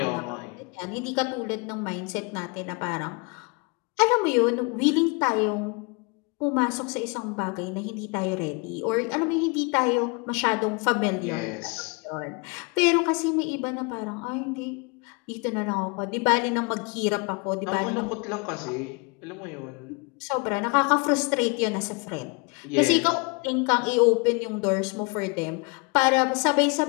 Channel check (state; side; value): quieter; right; 30.2 dB